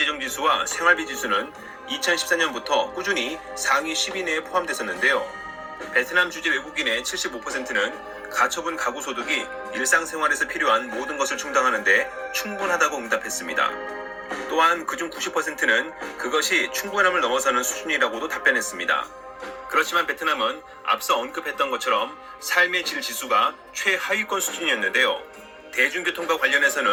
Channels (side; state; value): both; identical; correlation 1.00